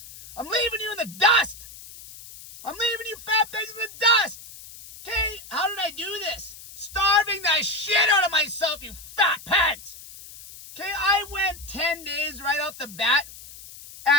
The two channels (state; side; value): noise; left; hiss, 17 dB below the sound